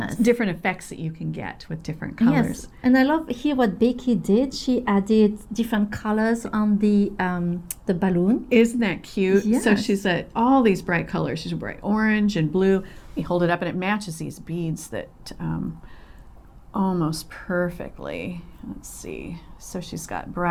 effects that you can get with different colors. Yes, and I love here what Becky did. She added different colors on the balloon. Isn't that cute? Yes. So she's all these bright colors. She's bright orange and blue. We hold it up and it matches these beads that almost perfectly. Let's see. So she's got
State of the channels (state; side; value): identical; both; correlation 1.00